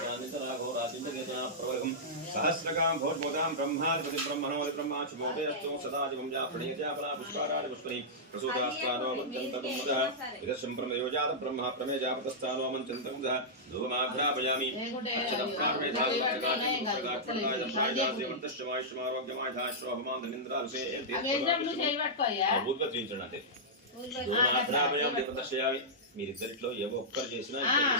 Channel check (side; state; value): both; normal; correlation -0.11